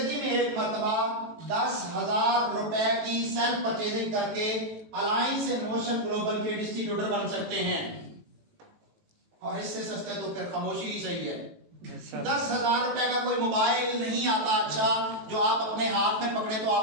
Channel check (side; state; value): left; late; 18 ms